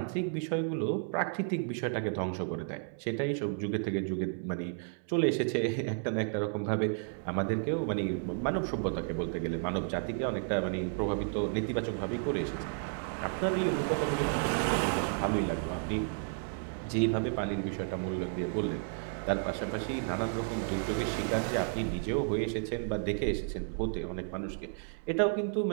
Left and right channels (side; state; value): left; silent; 56 dB below the other